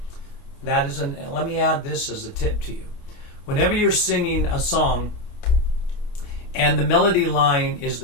That is let me add this as a tip to you. Whenever you're singing a song and the melody line is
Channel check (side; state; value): right; late; 28 ms